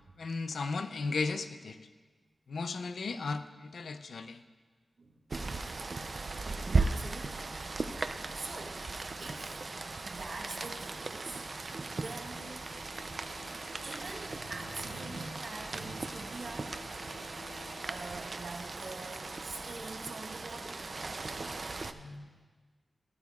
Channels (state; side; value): normal; both; correlation 0.92